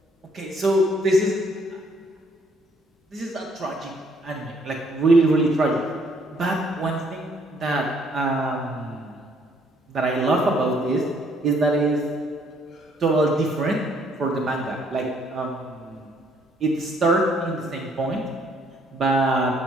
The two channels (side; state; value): both; normal; correlation 0.65